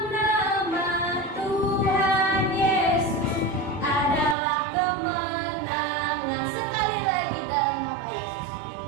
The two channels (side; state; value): left; drops out; at 4.4 s